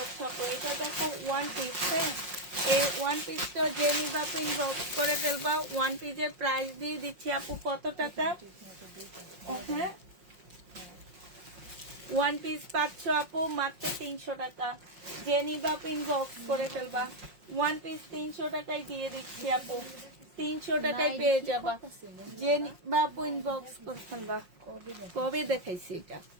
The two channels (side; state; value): left; late; 5.5 ms